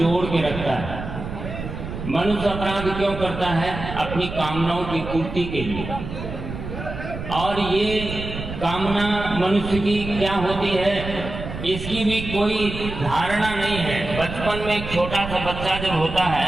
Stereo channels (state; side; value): noise; right; rumble, 8 dB below the sound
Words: के रखता है। मनुष्य अपराध क्यों करता है? अपनी कामनाओं की पूर्ति के लिए। और ये कामना मनुष्य की क्या होती है, इसकी भी कोई धारणा नहीं है। बचपन में एक छोटा सा बच्चा जब होता